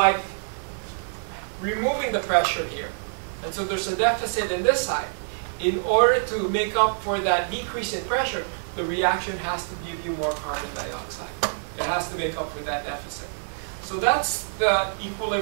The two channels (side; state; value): left; silent; digital silence